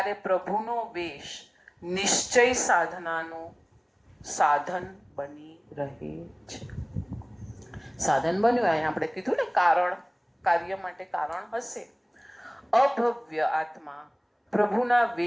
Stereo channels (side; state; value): both; identical; correlation 1.00